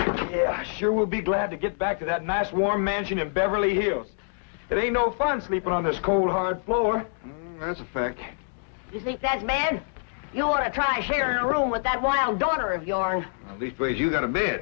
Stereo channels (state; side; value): silent; right; digital silence